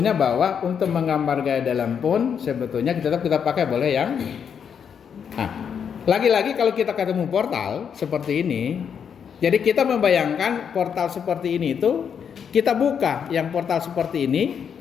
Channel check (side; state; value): right; quieter; 7.4 dB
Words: bahwa untuk menggambar gaya dalam pun sebetulnya kita pakai boleh yang lagi-lagi kalau kita ketemu portal seperti ini, jadi kita membayangkan portal seperti ini itu kita buka yang portal seperti ini